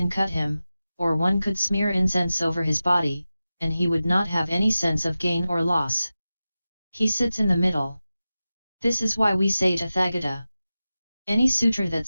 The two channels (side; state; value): both; inverted; correlation -0.94